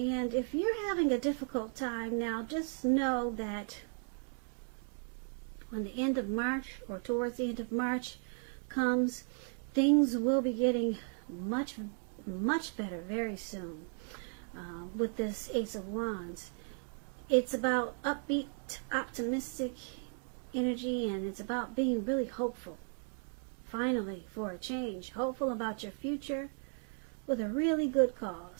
if you're having a difficult time now, just know that when the end of March, or towards the end of March comes, things will be getting much better very soon. With this Ace of Wands, it's about upbeat, optimistic energy, and it's about being really hopeful, finally, for a change. Hopeful about your future with a really good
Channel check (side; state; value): left; silent; 54 dB below the other